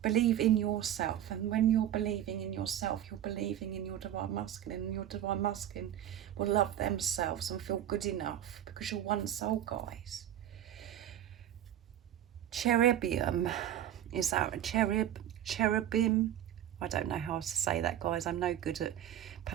believe in yourself, and when you're believing in yourself, you're believing in your divine masculine, and your divine masculine will love themselves and feel good enough, because you're one soul, guys. Cherubim, is that a cherubim? I don't know how to say that, guys. I'm no good at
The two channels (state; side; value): quieter; left; 11.4 dB